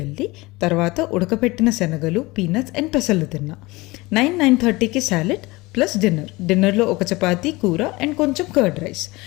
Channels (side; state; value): right; quieter; 22.1 dB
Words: తర్వాత ఉడకపెట్టిన శనగలు, పీనట్స్ అండ్ పెసలు తిన్నా. 9-9:30కి సాలెడ్ ప్లస్ డిన్నర్లో ఒక చపాతీ, కూర అండ్ కొంచెం కర్డ్ రైస్.